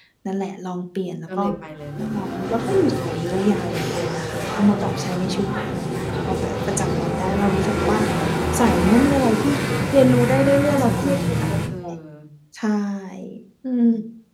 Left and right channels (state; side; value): identical; both; correlation 1.00